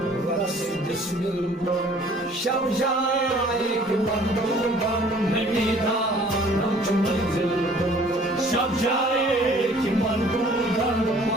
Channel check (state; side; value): normal; both; correlation 0.54